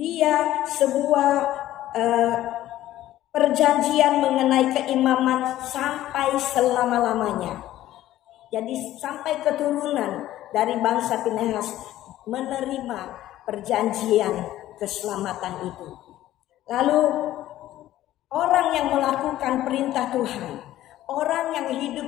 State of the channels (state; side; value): quieter; right; 14.0 dB